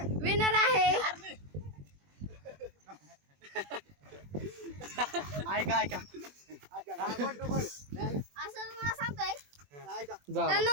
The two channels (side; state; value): left; late; 21 ms